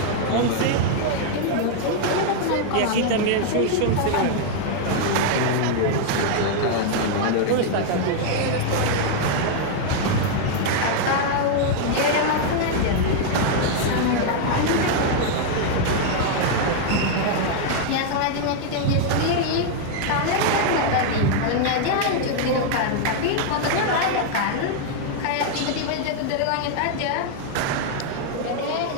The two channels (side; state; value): both; different; correlation 0.00